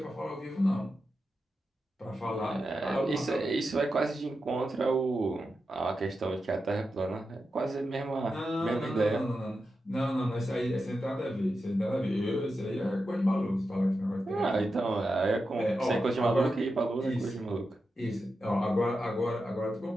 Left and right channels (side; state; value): both; normal; correlation 0.89